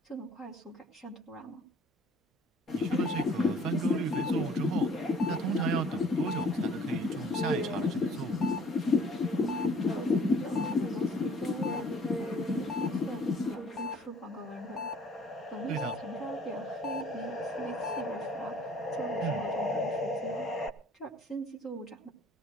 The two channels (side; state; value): both; normal; correlation 0.54